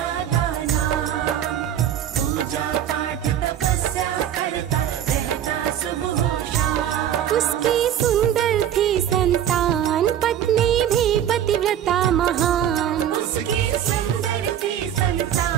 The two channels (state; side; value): quieter; left; 10.3 dB